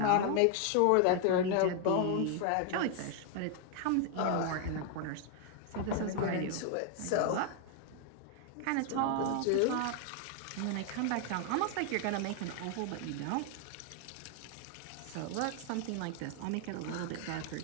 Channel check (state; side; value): different; both; correlation 0.00